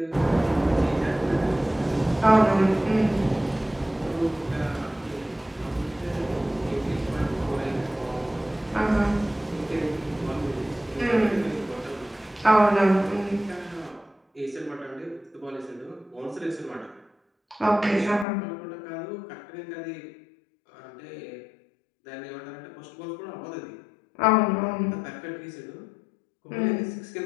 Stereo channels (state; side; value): drops out; right; at 18.2 s